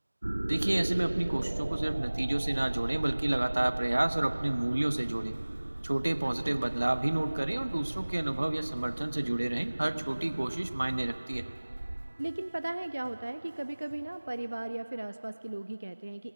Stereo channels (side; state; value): both; inverted; correlation -1.00